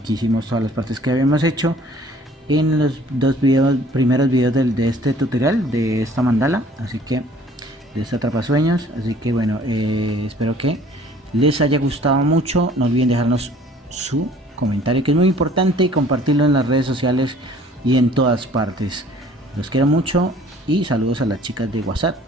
hicimos todas las partes que habíamos hecho en los primeros videos de este tutorial, de esta mandala, así que de esta atrapasueños. Así que bueno, espero que les haya gustado mucho. No olviden dejarnos su comentario, que es muy importante, y compartirlo en las redes sociales y en todas partes. Los quiero mucho y saludos a las chicas de WhatsApp.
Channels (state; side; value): normal; both; correlation 0.54